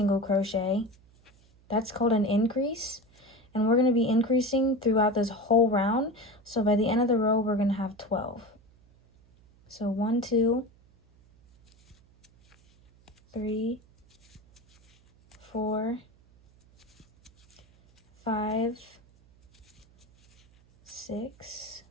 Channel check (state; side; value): noise; right; hum, 29 dB below the sound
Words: crochet. That's called an increase. And we're going to be increasing throughout this whole round. So by the end of the row, we're going to have 12. So 1, 2, 3, 4, 5, 6,